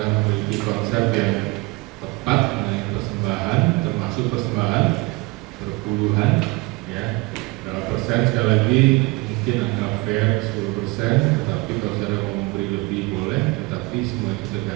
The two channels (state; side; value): quieter; left; 24.2 dB